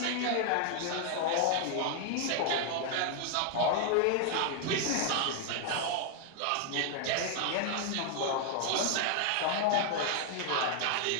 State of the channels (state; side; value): different; both; correlation 0.00